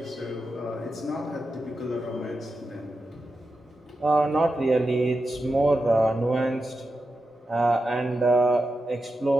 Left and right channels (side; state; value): both; normal; correlation 0.89